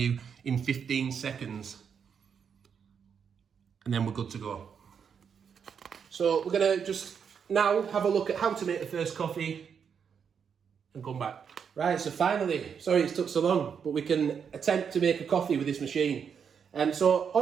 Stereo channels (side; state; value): left; quieter; 7.0 dB